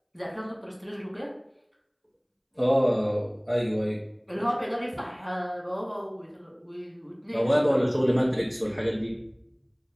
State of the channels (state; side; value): identical; both; correlation 1.00